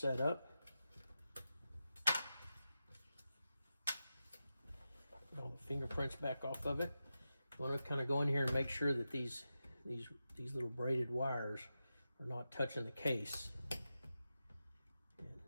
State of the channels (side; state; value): both; inverted; correlation -0.91